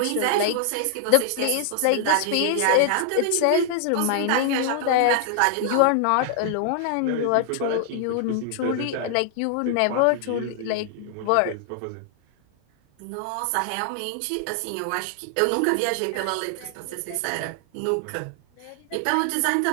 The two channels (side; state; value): both; different; correlation 0.00